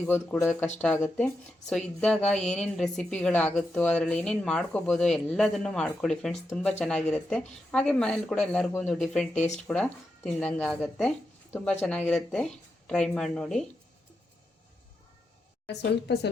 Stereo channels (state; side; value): normal; both; correlation 0.86